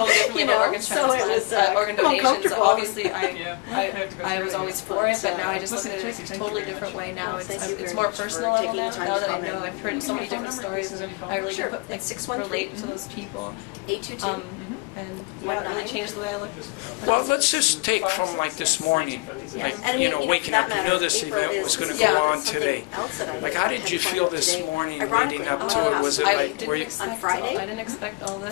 differently about organ transplants, organ donations. Obviously, I was always for it, but now I just look at it in a totally different way. Now it's more personal level now. Now that I know, I've heard so many different stories, and I really can relate to those people. And yeah, it really changed the way I look. Well, let's just take from like this morning, like, you know, waking up. You knew this event was going to go on today. Like, how did you feel this morning leading up to it? Was it like, were you? I didn't expect all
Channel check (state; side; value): quieter; right; 27.0 dB